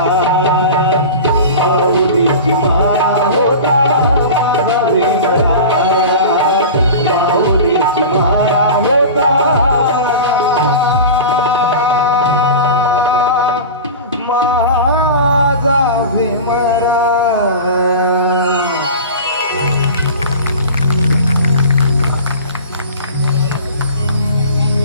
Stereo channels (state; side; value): inverted; both; correlation -0.33